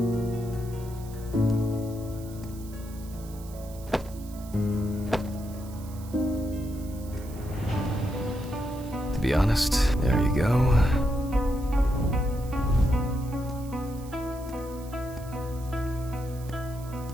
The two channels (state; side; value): noise; right; hiss, 20 dB below the sound